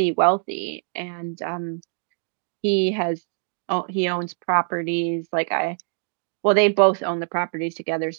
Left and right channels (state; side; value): silent; left; 63 dB below the other